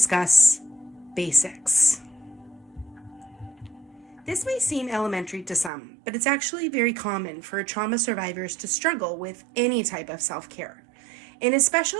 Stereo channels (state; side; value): drops out; left; at 5.7 s